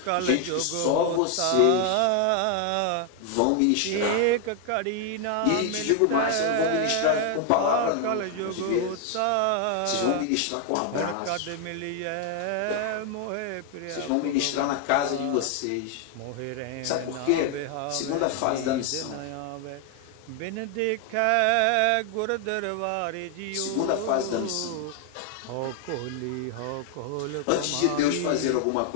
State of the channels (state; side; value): different; both; correlation 0.00